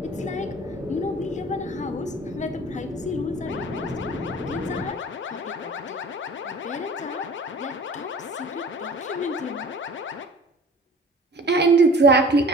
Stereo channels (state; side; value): normal; both; correlation 0.45